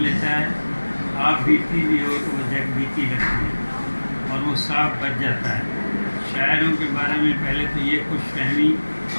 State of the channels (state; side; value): inverted; both; correlation -1.00